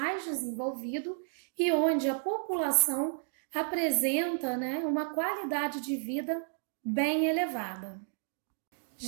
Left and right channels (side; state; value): left; silent; digital silence